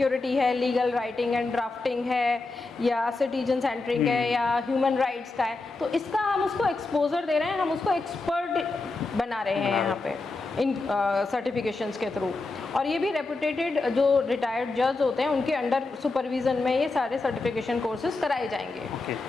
है, लीगल राइटिंग एंड ड्राफ्टिंग है, या सिटीजन सेंटरिंग है, या ह्यूमन राइट्स का है। तो इसका हम उसको एक्सपोजर दे रहे हैं, हम उसको एक्सपर्ट बना रहे हैं यहाँ पे इन सर्टिफिकेशंस के थ्रू। और ये भी रेपुटेटेड जो रिटायर्ड जज होते हैं उनके अंडर सुपरविजन में ये सारे सर्टिफिकेशन कोर्सेज कराए जाएंगे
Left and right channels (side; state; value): right; quieter; 3.5 dB